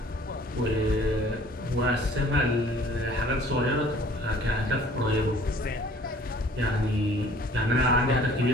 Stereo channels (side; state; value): both; normal; correlation 0.53